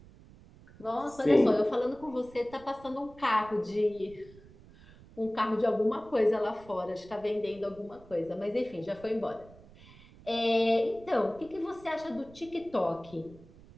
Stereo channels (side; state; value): right; noise; rumble, 22 dB below the sound